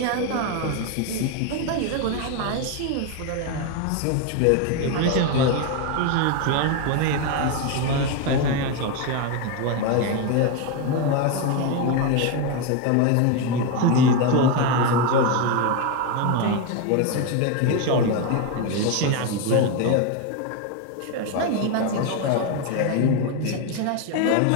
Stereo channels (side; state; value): both; different; correlation 0.02